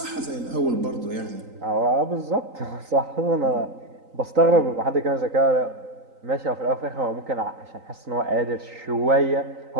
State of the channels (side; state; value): left; late; 3.9 ms